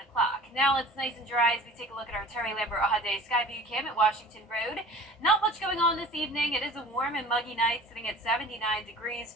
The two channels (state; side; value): normal; both; correlation 0.43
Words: Now it's nice and dry as we take a look at our Terry Lambert Hyundai Skyview cam at Washington Road. Not much going on this evening. It is a warm and muggy night, sitting at 79 degrees,